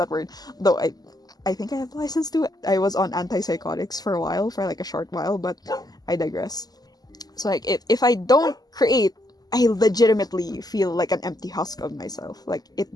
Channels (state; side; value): late; right; 0.19 ms